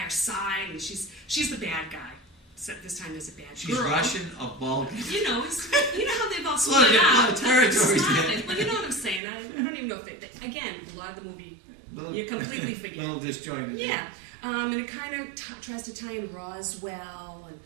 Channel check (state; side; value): drops out; left; at 9.2 s